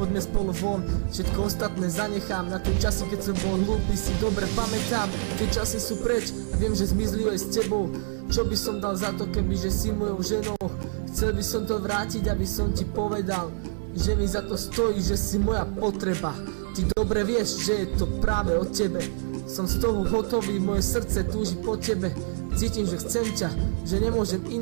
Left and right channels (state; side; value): silent; left; digital silence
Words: spolu von, všetko ostatné zanechám. Na tie časy, keď som bol hlúpy, si dobre pamätám. Tie časy sú preč, viem, že zmizli aj s tebou. Čo by som dal za to, kebyže si mojou ženou? Chcel by som to vrátiť, aby som ti povedal, že mi za to stojí, že si moja potreba. Ty dobre vieš, že je to práve o tebe. Som z toho hotový, moje srdce túži po tebe. Cítim, že chcem ťa, že nemôžem